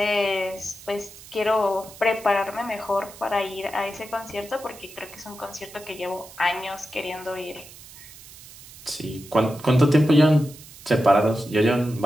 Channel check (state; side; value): noise; right; hiss, 19 dB below the sound